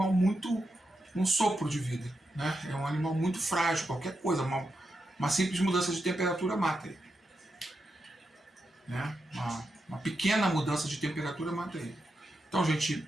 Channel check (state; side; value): normal; both; correlation 0.86